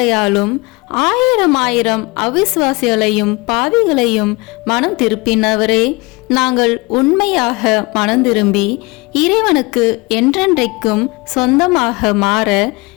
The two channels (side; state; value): right; quieter; 25.5 dB